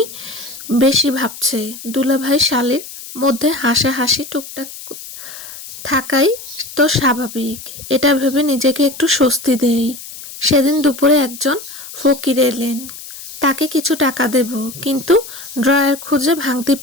বেশি ভাবছে। দুলাভাই শালীর মধ্যে হাসাহাসি টুকটাক থাকাই তো স্বাভাবিক, এটা ভেবে নিজেকে একটু স্বস্তি দেই। সেদিন দুপুরে একজন ফকির এলেন, তাকে কিছু টাকা দেব, কিন্তু ড্রয়ার খুঁজে ভাঙতে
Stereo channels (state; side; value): noise; left; hiss, 13 dB below the sound